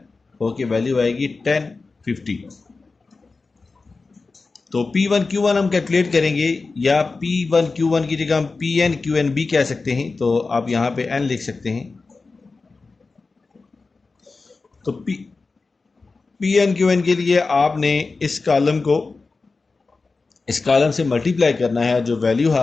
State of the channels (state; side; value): quieter; right; 4.0 dB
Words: होके वैल्यू आएगी 1050। तो P1 Q1 हम कैलकुलेट करेंगे या P1 Q1 की जगह हम PN QN भी कह सकते हैं, तो आप यहाँ पे N लिख सकते हैं। तो PN QN के लिए आपने इस कॉलम से मल्टीप्लाई करना है, जो वैल्यू